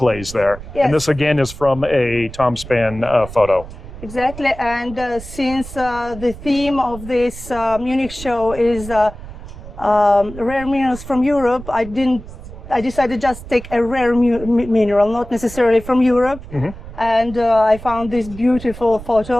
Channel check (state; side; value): noise; right; rumble, 14 dB below the sound